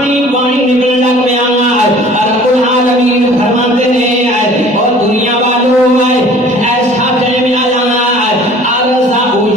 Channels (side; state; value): both; normal; correlation 0.49